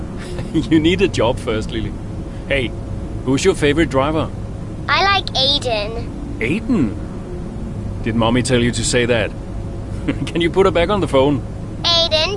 You need a job first, Lily. Hey, who's your favorite driver? I like Aiden. Aiden? Did Mommy tell you to say that? Can you put her back on the phone?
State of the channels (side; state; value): both; identical; correlation 1.00